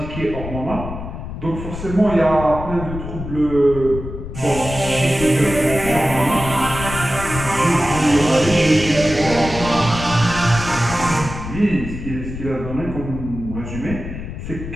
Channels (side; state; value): left; noise; rumble, 8 dB below the sound